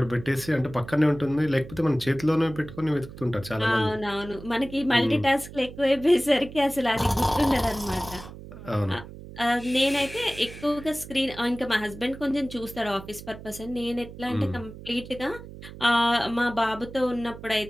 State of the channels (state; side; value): noise; right; hum, 14 dB below the sound